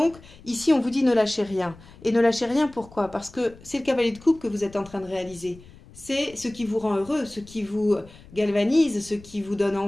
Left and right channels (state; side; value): noise; left; rumble, 22 dB below the sound